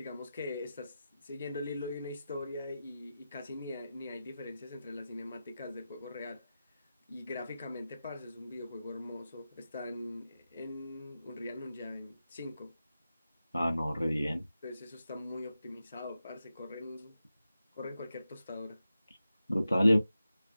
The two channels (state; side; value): inverted; both; correlation -0.92